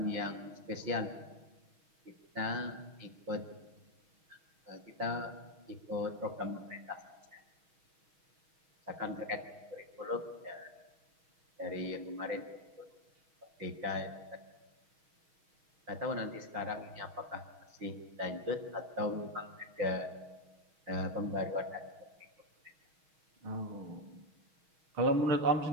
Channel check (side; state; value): left; late; 6.3 ms